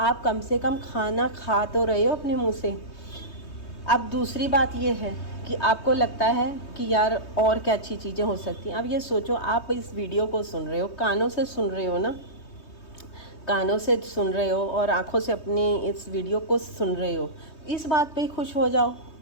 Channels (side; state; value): right; late; 3.2 ms